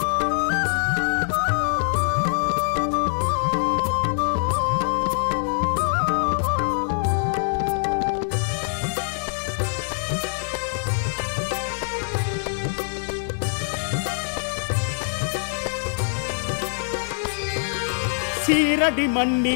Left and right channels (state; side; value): silent; right; 63 dB below the other